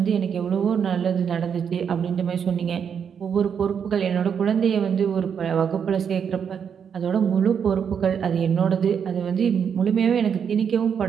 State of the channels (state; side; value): quieter; left; 7.4 dB